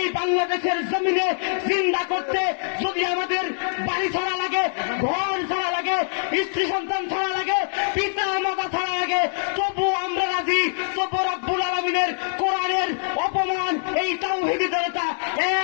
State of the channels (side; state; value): right; silent; digital silence